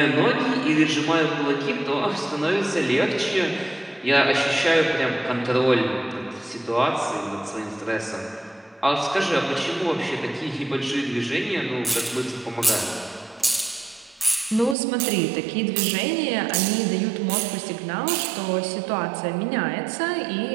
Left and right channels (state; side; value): drops out; left; at 14.8 s